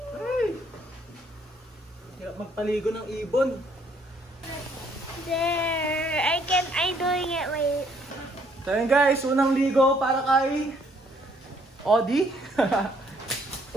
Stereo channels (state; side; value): normal; both; correlation 0.66